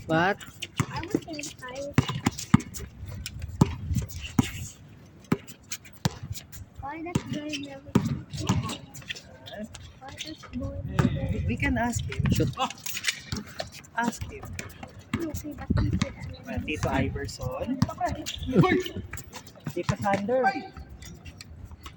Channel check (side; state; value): both; identical; correlation 1.00